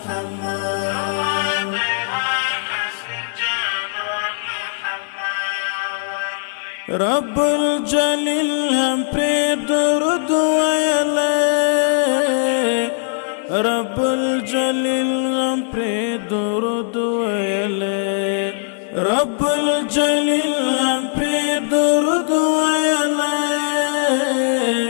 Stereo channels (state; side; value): silent; right; 65 dB below the other